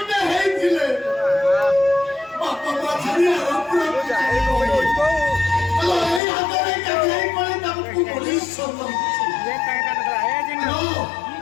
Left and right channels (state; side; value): drops out; right; at 6.2 s